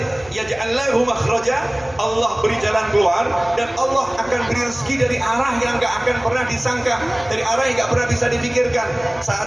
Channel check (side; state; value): left; noise; hum, 22 dB below the sound